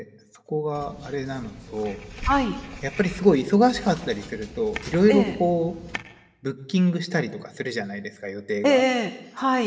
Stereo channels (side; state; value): both; identical; correlation 1.00